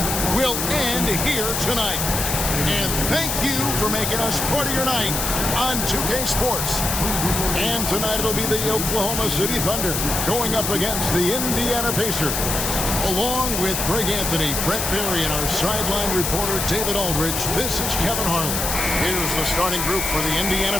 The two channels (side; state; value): left; noise; hiss, 1 dB below the sound